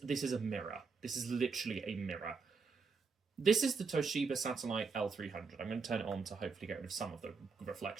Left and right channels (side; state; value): left; quieter; 4.9 dB